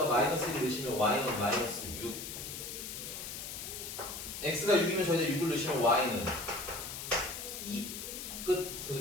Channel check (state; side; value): noise; left; hiss, 8 dB below the sound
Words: 마이너스 1을 넣으시면 y는 마이너스 6. x가 6이면 저희가 6을 넣으시면 y는 2. 끝. 그래서